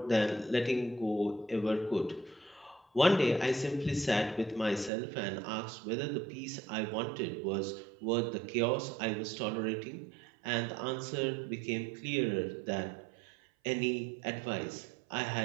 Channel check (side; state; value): left; drops out; at 4.9 s